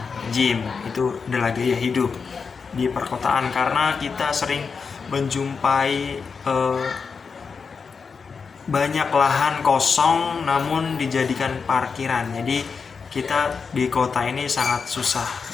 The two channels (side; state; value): right; quieter; 5.4 dB